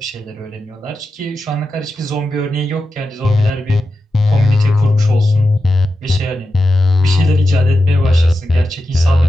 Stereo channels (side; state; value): both; normal; correlation 0.90